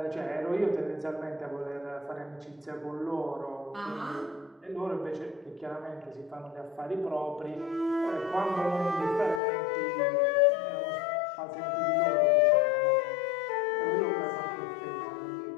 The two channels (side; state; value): right; drops out; at 9.4 s